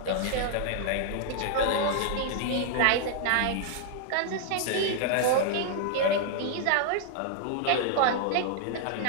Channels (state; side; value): different; both; correlation 0.00